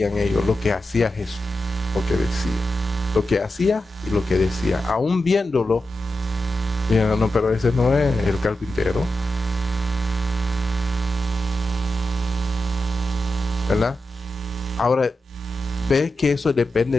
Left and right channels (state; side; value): normal; both; correlation 0.89